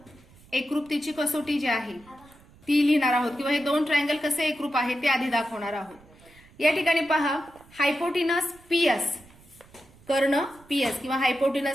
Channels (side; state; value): right; noise; rumble, 26 dB below the sound